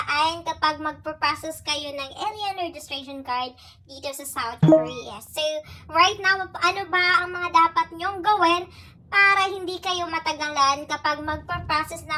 kapag magpo-process kayo ng alien registration card dito sa South Korea. So right now, ano ba ang mga dapat niyong gawin para hindi kayo matagalan kapag magpo-process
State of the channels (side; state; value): both; identical; correlation 1.00